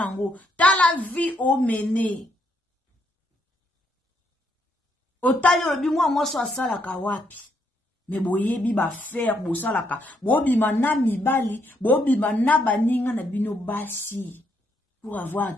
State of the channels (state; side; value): normal; both; correlation 0.74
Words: tala vie o mene otali obi mwa so asala ka wapi me boyebi ba faire bosalaka bobima na mibali bobima na baninga na bino basi pour avoir